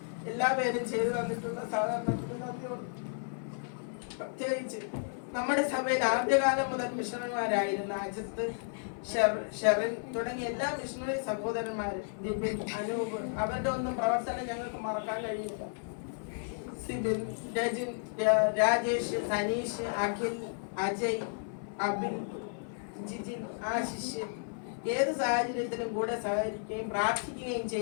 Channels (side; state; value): right; silent; 56 dB below the other